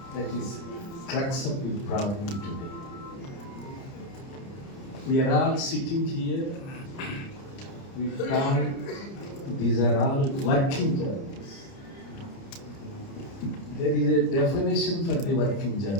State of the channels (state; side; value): late; right; 30 ms